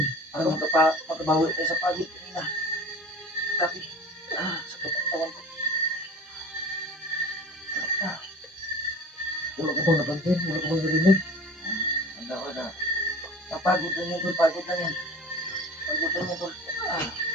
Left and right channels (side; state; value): both; normal; correlation 0.40